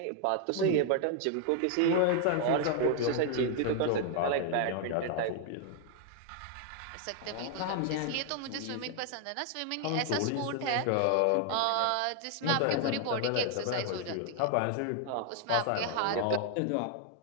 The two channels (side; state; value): both; different; correlation 0.00